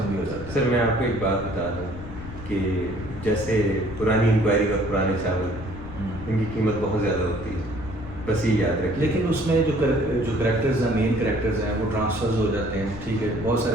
بھی ہو جاتا ہے. سر میں آپ کو ایک بات بتا دوں کہ جیسے پرانی انکوائری اور پرانے چاول، ان کی قیمت بہت زیادہ ہوتی ہے، بس یہ یاد رکھیں. لیکن اس میں جو کریکٹرز ہیں، مین کریکٹرز ہیں، وہ ٹرانسفرز ہو جاتے ہیں، ٹھیک ہے. بہت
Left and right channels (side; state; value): left; noise; rumble, 11 dB below the sound